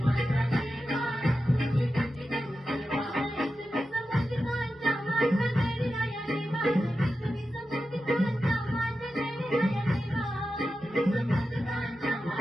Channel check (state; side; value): normal; both; correlation 0.91